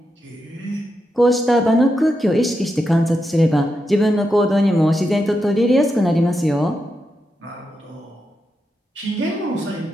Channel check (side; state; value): both; normal; correlation 0.86